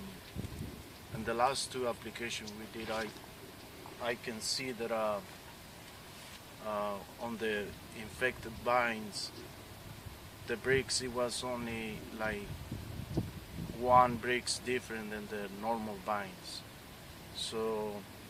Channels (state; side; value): identical; both; correlation 1.00